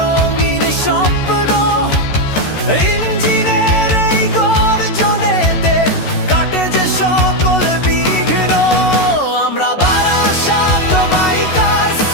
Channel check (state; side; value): late; right; 14 ms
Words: স্বপ্ন, ইঞ্জিনের এই গর্জনেতে কাটে যে সকল বিঘ্ন। আমরা বারাসাত বাইকার্স,